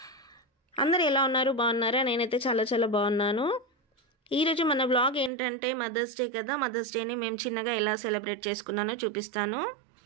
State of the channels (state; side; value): drops out; left; at 5.3 s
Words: అందరు ఎలా ఉన్నారు, బాగున్నారా? నేనైతే చాలా చాలా బాగున్నాను. ఈరోజు మన వ్లాగ్ ఏంటంటే మదర్స్ డే కదా. మదర్స్ డేని మేము చిన్నగా ఎలా సెలబ్రేట్ చేసుకున్నానో చూపిస్తాను.